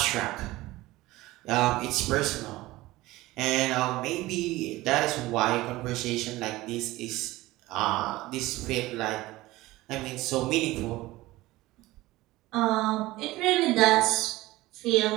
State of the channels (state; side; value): quieter; left; 18.5 dB